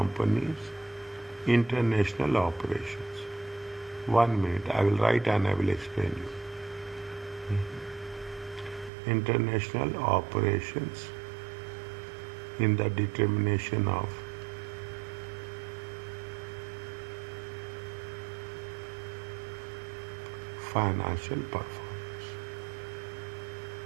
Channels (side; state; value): left; drops out; at 8.9 s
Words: international operations. 1 minute, I will write and I will explain you. International operations in the determination of financial performance.